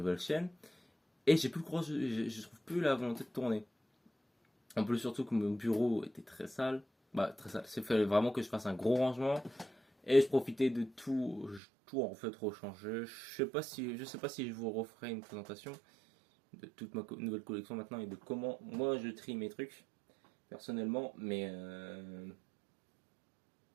chaîne. Et j'ai plus le courage. Je trouve plus la volonté de tourner. En plus, surtout que mon bureau était très sale. Bah, très sale. Il fallait vraiment que je fasse un gros rangement. Et je profitais de tout en fait rechanger. Je sais pas si je vous referai une présentation de toute ma nouvelle collection maintenant et de comment moi je trie mes trucs personnellement. Mais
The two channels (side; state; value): left; drops out; at 11.6 s